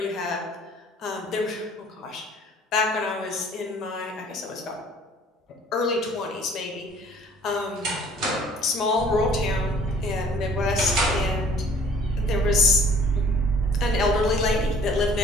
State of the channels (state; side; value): normal; both; correlation 0.54